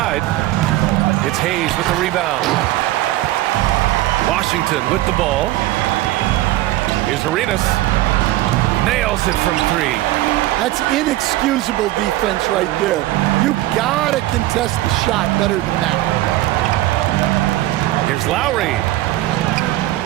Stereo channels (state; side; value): quieter; left; 16.3 dB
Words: It's Hayes with the rebound. Washington with the ball. Here's Arenas. Nails it from 3. That's inexcusable defense right there. You gotta contest the shot better than that. Here's Lowry.